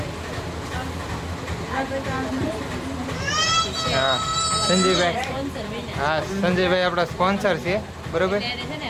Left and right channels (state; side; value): identical; both; correlation 1.00